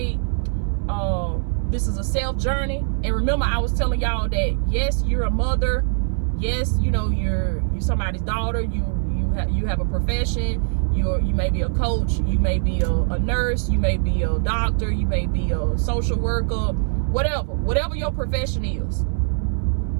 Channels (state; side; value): silent; left; 62 dB below the other